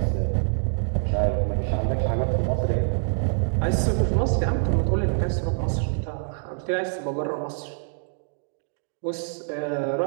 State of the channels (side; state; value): left; silent; digital silence